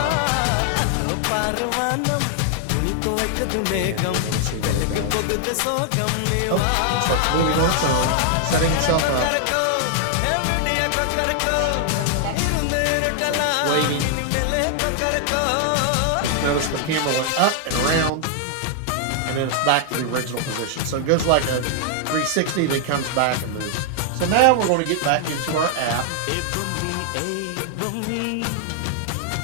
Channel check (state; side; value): different; both; correlation 0.00